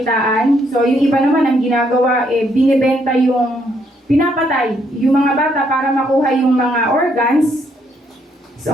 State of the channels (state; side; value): normal; both; correlation 0.72